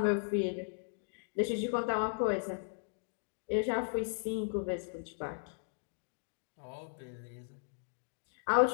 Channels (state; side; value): silent; right; digital silence